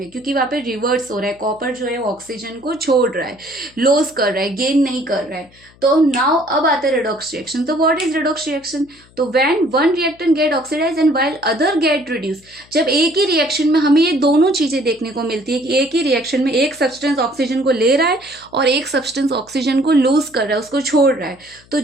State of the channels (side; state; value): left; noise; hum, 28 dB below the sound